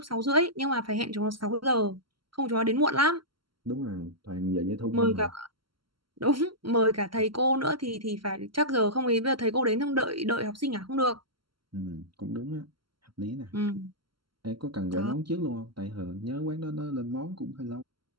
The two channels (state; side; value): late; left; 0.73 ms